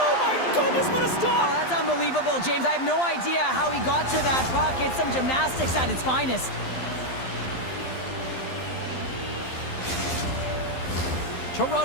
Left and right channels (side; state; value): right; late; 12 ms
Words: my goodness, what a stop! Oh, that's unbelievable, James. I have no idea how he got to that puck. It's some gymnastics at its finest.